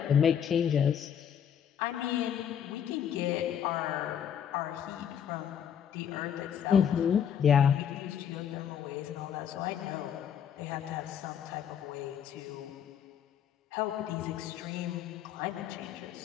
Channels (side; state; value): right; quieter; 8.5 dB